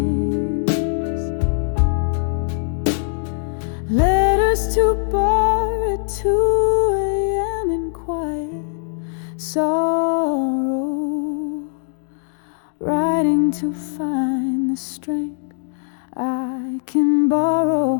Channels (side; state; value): right; silent; digital silence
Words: us to bar at 2 a.m. in quiet sorrow, riding to find the strength I can borrow,